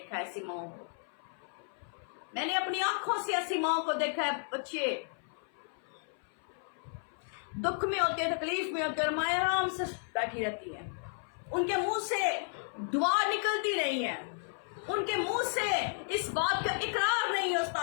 है ऐसी माओ को, मैंने अपनी आंखों से ऐसी माओ को देखा है, बच्चे दुख में होते हैं, तकलीफ में होते हैं और माँ आराम से बैठी रहती हैं। उनके मुंह से दुआ निकलती नहीं है, उनके मुंह से इस बात का इकरार नहीं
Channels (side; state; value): right; silent; 56 dB below the other